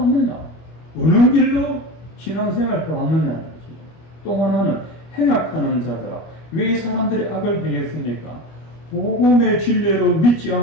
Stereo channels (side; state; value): right; late; 25 ms